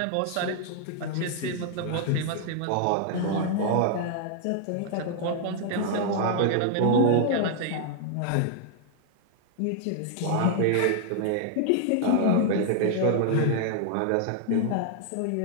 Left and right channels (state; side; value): different; both; correlation 0.00